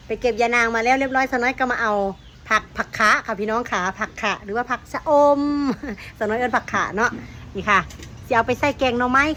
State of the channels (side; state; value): both; identical; correlation 1.00